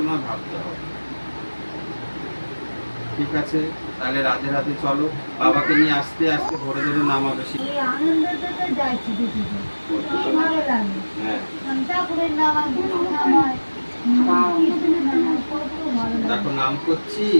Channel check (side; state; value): both; inverted; correlation -1.00